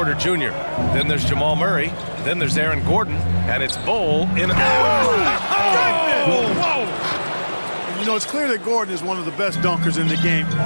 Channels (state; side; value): inverted; both; correlation -1.00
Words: Jr. Then there's Jamal Murray. Then there's Aaron Gordon. And it's Bol in a... Whoa! You know, it's clear that Gordon is one of the best dunkers in the game,